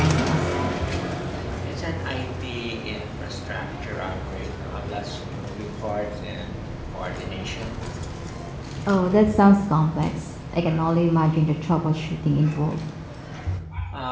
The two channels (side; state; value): both; identical; correlation 1.00